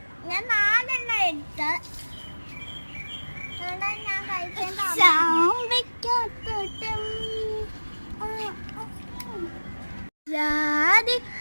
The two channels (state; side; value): inverted; both; correlation -1.00